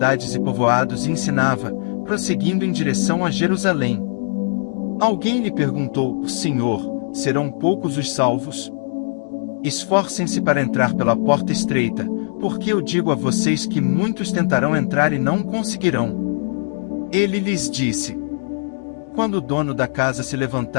e povoados e ensinava, prosseguindo em direção a Jerusalém. Alguém lhe perguntou: Senhor, serão poucos os salvos? Esforcem-se para entrar pela porta estreita, porque eu digo a vocês que muitos tentarão entrar e não conseguirão. Ele lhes disse: Quando o dono da casa se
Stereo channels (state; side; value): silent; right; digital silence